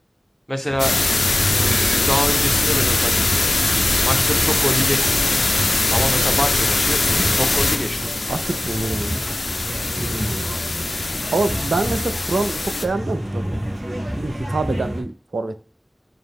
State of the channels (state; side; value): normal; both; correlation 0.96